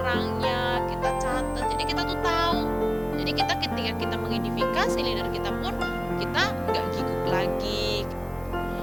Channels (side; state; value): left; noise; hiss, 28 dB below the sound